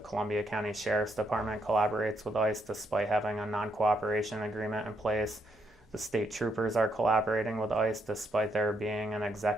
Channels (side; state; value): both; normal; correlation 0.76